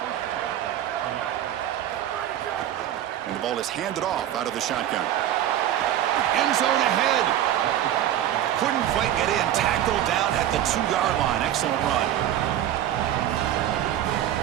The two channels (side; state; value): left; quieter; 11.8 dB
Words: And the ball is handed off out of the shotgun. End zone ahead. Couldn't quite get in. Tackled down at the 2-yard line. Excellent run.